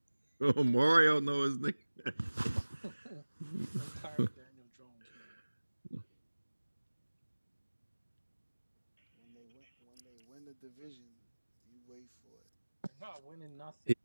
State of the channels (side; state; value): both; inverted; correlation -1.00